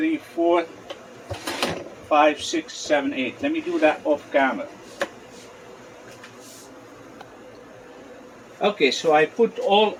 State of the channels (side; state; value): both; identical; correlation 1.00